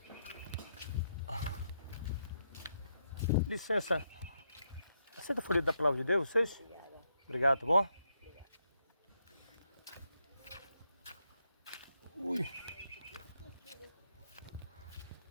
Licença. Aceita o folheto da palavra de Deus, vocês? Obrigado, tá bom? Ui.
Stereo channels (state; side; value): inverted; both; correlation -0.79